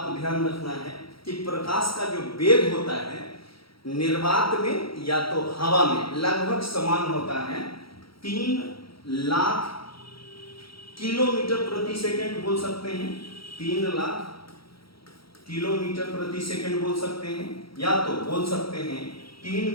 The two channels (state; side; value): late; right; 0.75 ms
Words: को ध्यान रखना है कि प्रकाश का जो वेग होता है निर्वात में या तो हवा में लगभग समान होता है, 3 लाख किलोमीटर प्रति सेकंड बोल सकते हैं, 3 लाख किलोमीटर प्रति सेकंड बोल सकते हैं, या तो बोल सकते हैं